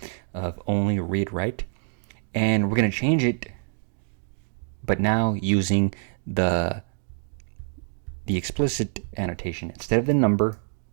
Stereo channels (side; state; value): left; silent; digital silence